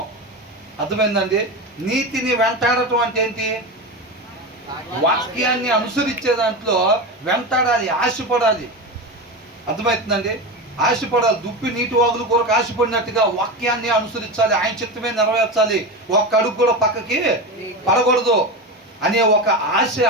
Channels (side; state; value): both; normal; correlation 0.21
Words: అర్థమైందండి? నీతిని వెంటాడటం అంటే ఏంటి? వాక్యాన్ని అనుసరించే దాంట్లో వెంటాడాలి, ఆశపడాలి. అర్థమవుతుందండి? ఆశపడాలి. దుప్పి నీటి వాగులు కొరకు ఆశపడినట్టుగా వాక్యాన్ని అనుసరించాలి, ఆయన చిత్తమే నెరవేర్చాలి. ఒక్క అడుగు కూడా పక్కకి పడకూడదు. అనే ఒక ఆశ,